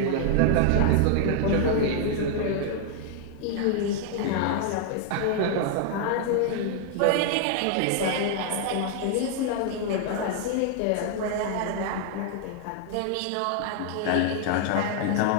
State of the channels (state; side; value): different; both; correlation 0.00